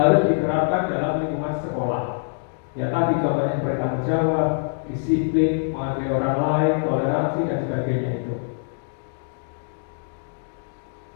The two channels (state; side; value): silent; right; digital silence